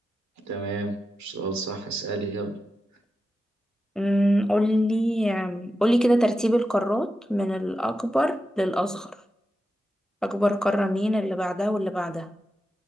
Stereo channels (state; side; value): normal; both; correlation 0.90